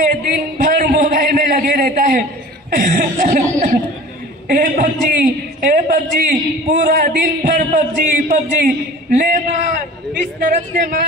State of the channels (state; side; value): normal; both; correlation 0.42